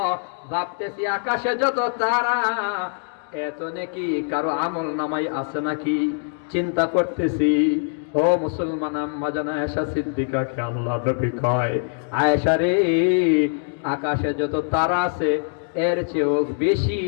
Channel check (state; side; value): silent; right; 63 dB below the other